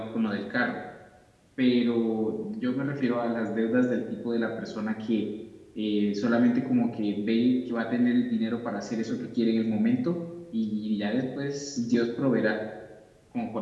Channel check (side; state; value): both; identical; correlation 1.00